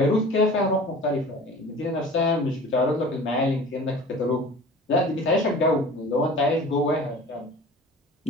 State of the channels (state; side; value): normal; both; correlation 0.41